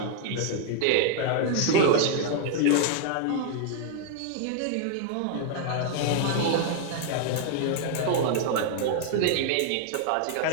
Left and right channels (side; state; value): both; different; correlation 0.00